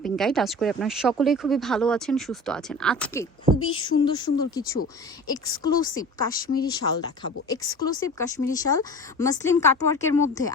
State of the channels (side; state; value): both; normal; correlation 0.37